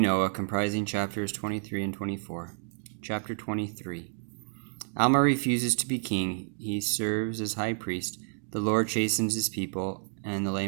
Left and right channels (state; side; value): silent; left; digital silence